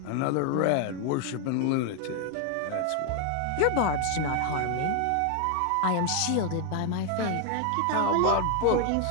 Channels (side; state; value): both; different; correlation 0.00